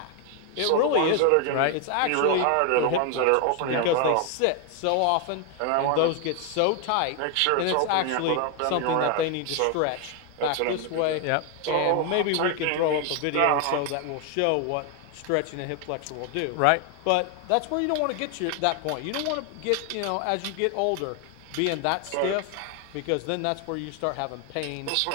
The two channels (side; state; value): both; different; correlation 0.01